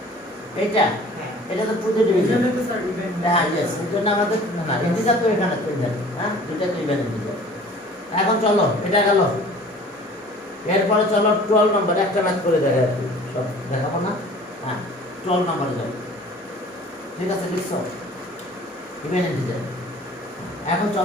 এইটা হ্যাঁ, এটা তো টু তে ডিভিশন। এটা তো স্যার ইভেন। হ্যাঁ, ইয়েস, এটা না আমাদের না ইন্টিজার তো এখানে তো ইভেন। হ্যাঁ, দুইটা তো ইভেন ইন্টিজার। এখন চলো, এটা গেল। এরপরে চলো 12 নম্বর, একটা ম্যাথ করে দেখা আর কি, সব দেখাবো না। হ্যাঁ, 12 নম্বরে যাও। ঠিক আছে, লিখছো ইভেন ইন্টিজার। এখন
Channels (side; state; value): both; normal; correlation 0.48